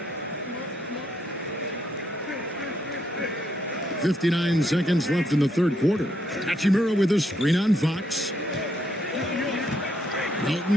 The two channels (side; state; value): both; normal; correlation 0.75